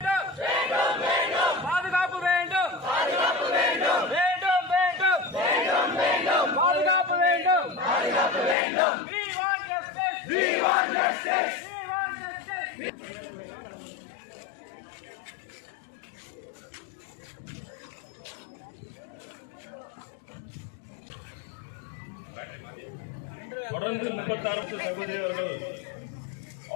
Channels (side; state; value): right; drops out; at 8.6 s